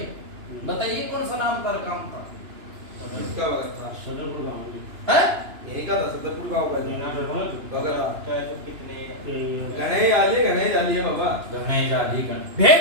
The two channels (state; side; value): late; left; 2.9 ms